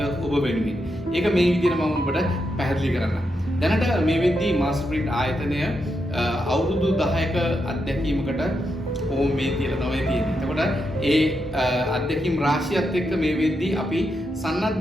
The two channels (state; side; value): normal; both; correlation 0.84